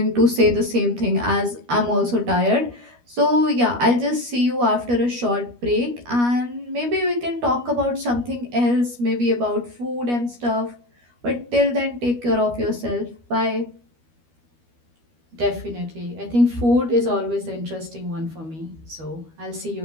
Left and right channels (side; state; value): left; late; 12 ms